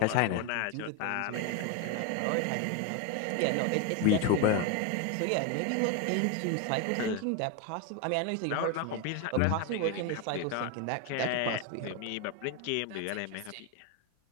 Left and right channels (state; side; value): different; both; correlation 0.02